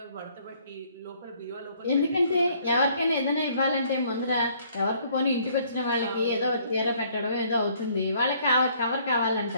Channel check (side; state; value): both; inverted; correlation -0.62